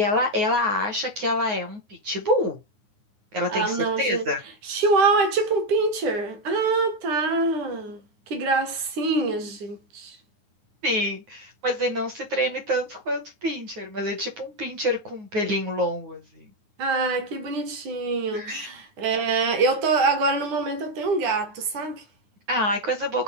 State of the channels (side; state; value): left; late; 9.5 ms